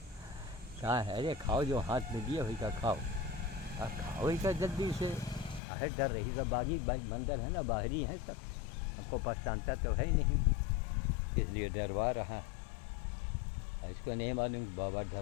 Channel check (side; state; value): right; drops out; at 5.6 s